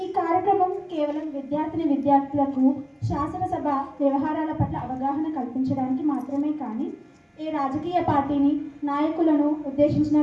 ఈ కార్యక్రమం కేవలం విద్యార్థులకు శాసనసభ వ్యవహారాల పట్ల అవగాహన కల్పించడానికి మాత్రమే కానీ ఏ రాజకీయ పార్టీని నాయకులను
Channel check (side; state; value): both; identical; correlation 1.00